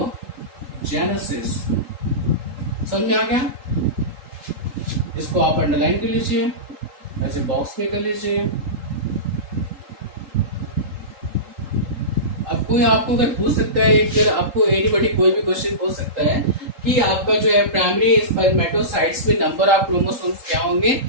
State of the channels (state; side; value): late; left; 3.8 ms